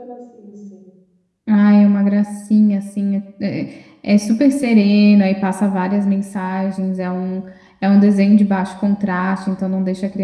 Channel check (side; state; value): both; identical; correlation 1.00